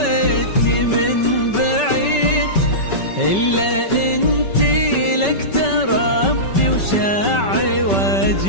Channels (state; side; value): late; right; 5.2 ms